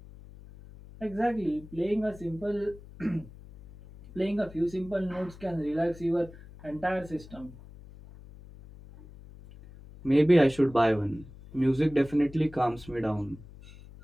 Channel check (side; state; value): left; noise; hum, 19 dB below the sound